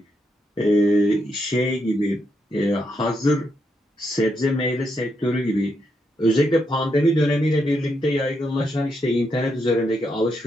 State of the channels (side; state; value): both; normal; correlation 0.80